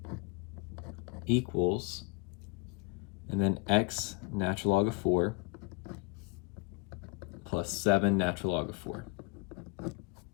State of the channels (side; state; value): right; quieter; 27.0 dB